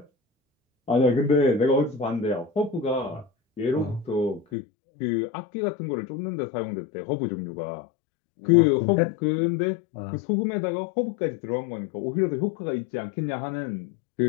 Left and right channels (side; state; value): right; drops out; at 4.5 s